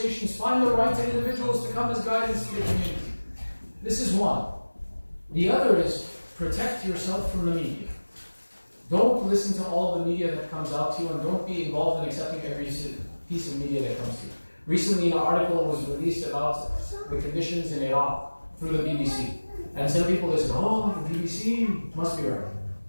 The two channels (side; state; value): both; inverted; correlation -1.00